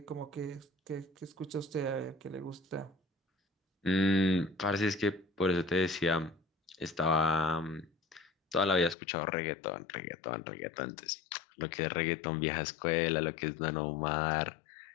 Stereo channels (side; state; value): right; drops out; at 9.0 s